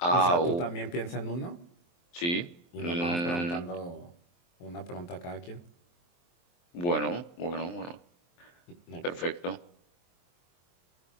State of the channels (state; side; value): late; right; 23 ms